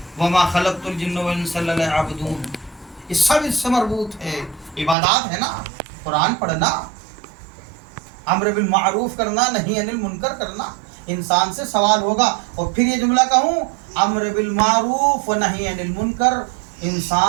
वमा खलक़तुल जिन्न वल इंसा इल्ला लियअबुदून, ये सब इससे मरबूत है, इबादत है ना। कुरान पढ़ना, अम्र बिल मारूफ करना, नहीं अनिल मुनकर करना, इंसान से सवाल होगा। और फिर ये जुमला कहूँ, अम्र बिल मारूफ व नही अनिल मुनकर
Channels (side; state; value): left; drops out; at 5.0 s